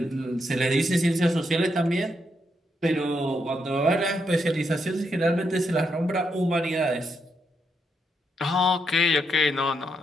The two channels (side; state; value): both; normal; correlation 0.80